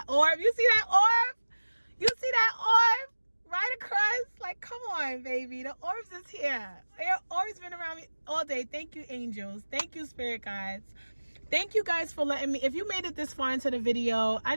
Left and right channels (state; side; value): inverted; both; correlation -1.00